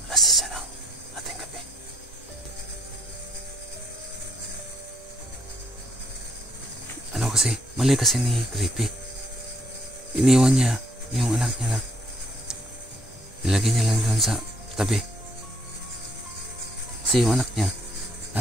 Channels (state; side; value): normal; both; correlation 0.68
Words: Alas 10 na ng ating gabi. Ano kasi, mali kasi ni Creepy. Iniwan niya yung anak niya na nilagay niya lang doon sa tabi. Kasi yung anak niya